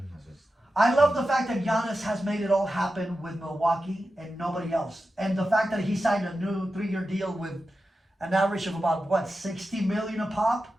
That's just. I love the fact that Giannis has made it all happen with Milwaukee and nobody else. And the fact that he signed a new 3-year deal with an average of about, what, 60 million a pop?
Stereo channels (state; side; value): normal; both; correlation 0.91